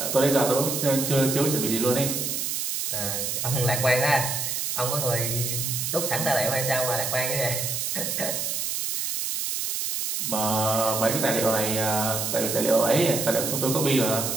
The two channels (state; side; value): noise; right; hiss, 1 dB below the sound